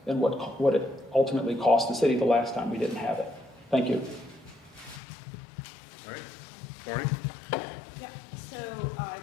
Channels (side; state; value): right; drops out; at 5.0 s